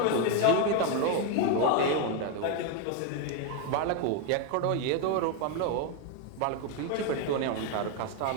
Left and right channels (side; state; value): both; different; correlation 0.01